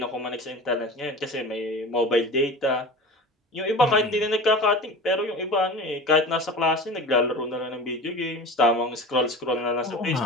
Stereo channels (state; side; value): normal; both; correlation 0.35